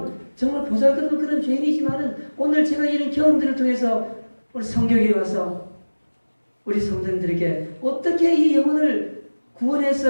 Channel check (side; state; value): both; inverted; correlation -1.00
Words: 정말 보잘것없는 그런 죄인이지만은 오늘 제가 이런 경험들을 통해서 우리 성경에 와서 우리 성도님들에게 어떻게 이 영혼을